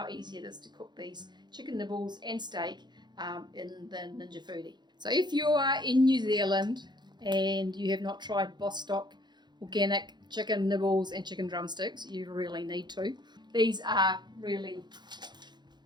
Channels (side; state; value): left; late; 0.21 ms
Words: easy it is to cook these chicken nibbles and steak in the Ninja Foodi. So if you are in New Zealand and you have not tried Bostock organic chicken nibbles and chicken drumsticks, you really need to. These are really,